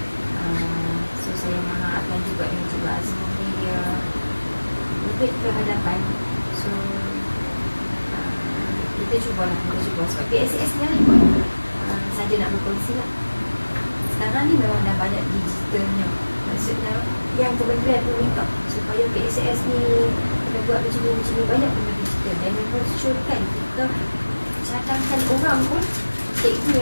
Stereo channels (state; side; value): inverted; both; correlation -1.00